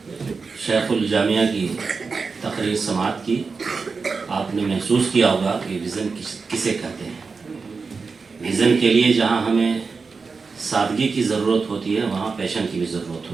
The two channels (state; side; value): quieter; left; 4.7 dB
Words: شیخ الجامعہ کی تقریر سماعت کی. آپ نے محسوس کیا ہوگا کہ ویژن کسے کہتے ہیں. ویژن کے لیے جہاں ہمیں سادگی کی ضرورت ہوتی ہے وہاں پیشن کی بھی ضرورت